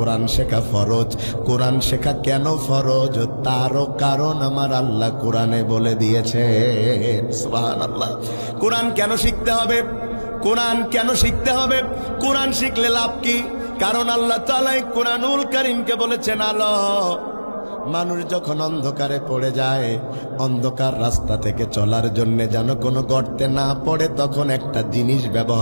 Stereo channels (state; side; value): inverted; both; correlation -1.00